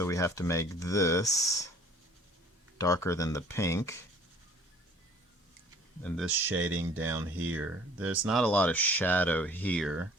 we have to make this darker than the pink. And this shading down here. There's not a lot of shadow here,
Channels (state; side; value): normal; both; correlation 0.52